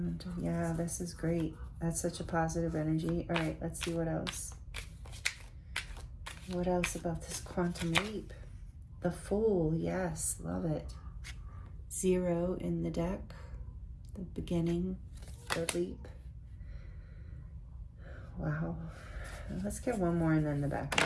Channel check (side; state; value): both; identical; correlation 1.00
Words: Yeah, this is great. That's such a positive energy. All right, let's see what else. What else about this quantum leap? The Fool, yes, love it. 0 in the deck. The beginning, the leap. Wow. Let's get one more and then the